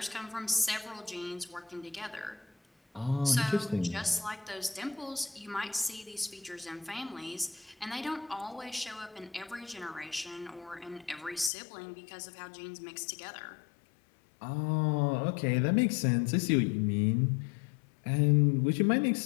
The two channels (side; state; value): right; drops out; at 11.5 s